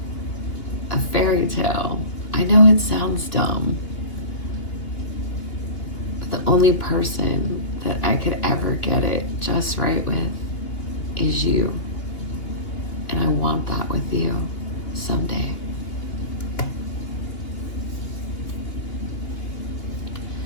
a fairy tale. I know it sounds dumb, but the only person that I could ever get it just right with is you. And I want that with you someday.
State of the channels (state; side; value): late; right; 2.8 ms